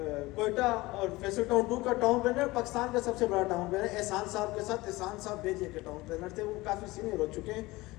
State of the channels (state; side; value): quieter; right; 20.5 dB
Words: Quetta اور فیصل ٹاؤن 2 کا ٹاؤن پلانر، پاکستان کا سب سے بڑا ٹاؤن پلانر احسان صاحب کے ساتھ. احسان صاحب بیجے کے ٹاؤن پلانر تھے، وہ کافی سینئر ہو چکے ہیں،